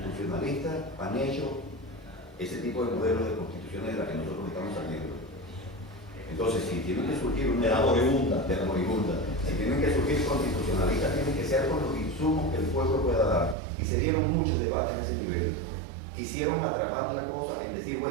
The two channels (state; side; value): drops out; left; at 13.6 s